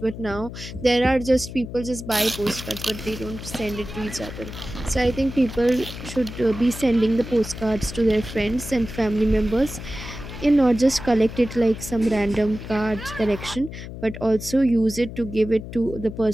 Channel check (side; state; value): left; noise; hum, 11 dB below the sound